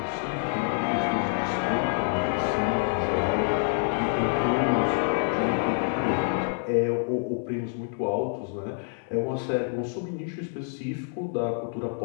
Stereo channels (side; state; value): right; silent; digital silence